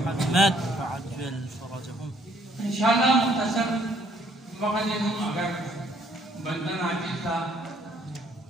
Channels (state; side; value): normal; both; correlation 0.65